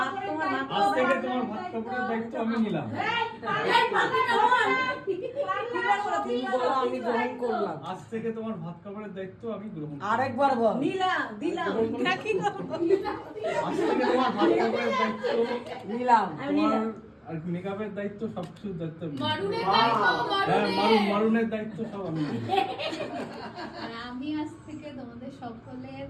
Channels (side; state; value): both; identical; correlation 1.00